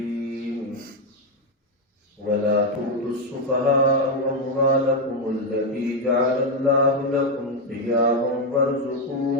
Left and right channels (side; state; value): both; normal; correlation 0.05